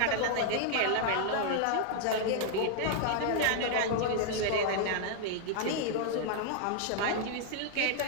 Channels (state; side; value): different; both; correlation 0.00